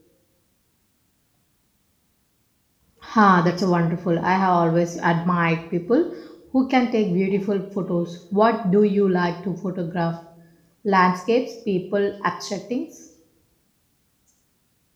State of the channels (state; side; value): identical; both; correlation 1.00